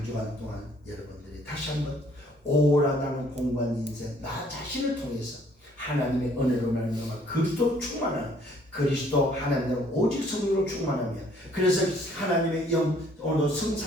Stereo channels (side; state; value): both; normal; correlation 0.61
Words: 주간 동안 여러분들이 다시 한번 오라 나는 공고한 인생 나 자신을 통해서 하나님의 은혜로 말미암아 그리스도 충만한 그리스도 하나님으로 오직 성령으로 충만하며 그래서 하나님의 영 오늘도